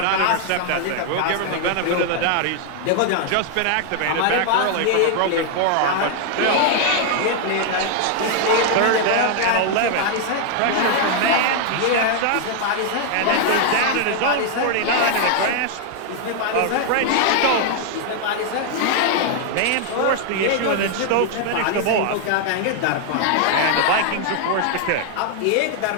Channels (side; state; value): both; different; correlation 0.00